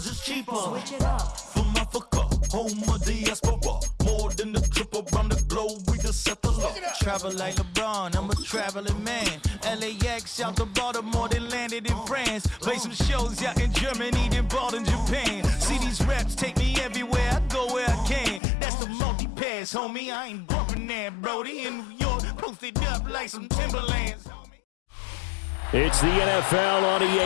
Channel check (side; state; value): right; drops out; at 18.4 s